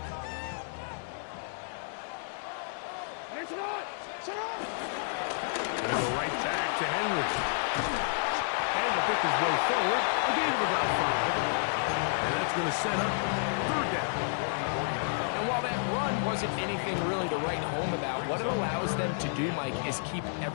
Gonna go right back to Henry. And to pick his way forward, a gain of about 5. And that's going to set up third down. And while that run wasn't anything really to write home about, what it allows them to do, Mike, is keep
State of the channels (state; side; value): silent; right; digital silence